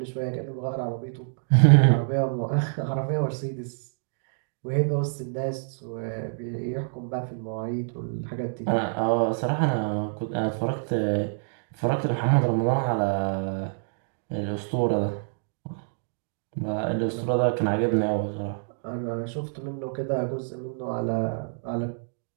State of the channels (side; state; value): left; silent; digital silence